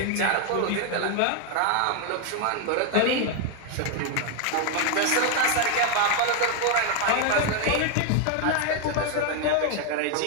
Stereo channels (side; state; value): both; different; correlation 0.01